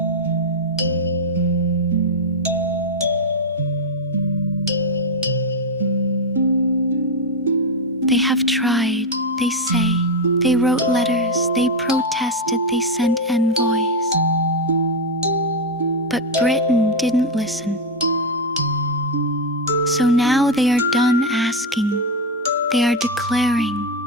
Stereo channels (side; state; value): both; normal; correlation 0.06